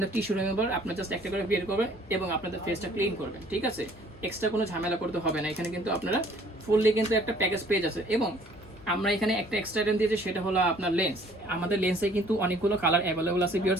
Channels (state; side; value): normal; both; correlation 0.57